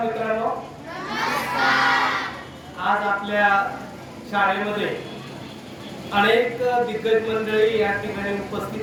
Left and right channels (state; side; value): identical; both; correlation 1.00